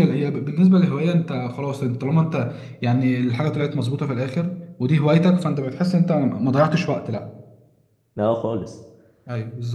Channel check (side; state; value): both; identical; correlation 1.00